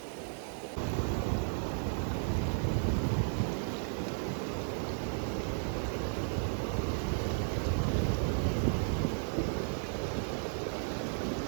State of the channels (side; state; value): left; silent; 55 dB below the other